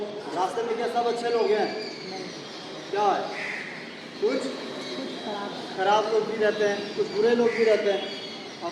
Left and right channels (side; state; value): both; identical; correlation 1.00